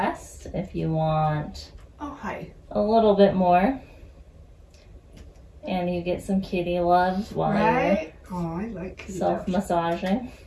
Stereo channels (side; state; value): both; identical; correlation 1.00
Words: if you want. Oh, hi. A little bit more. And you get some kitty loves while you're Oh, I like kitty self-massaging.